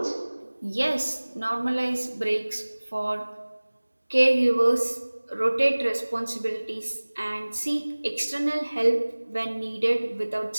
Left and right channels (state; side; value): inverted; both; correlation -1.00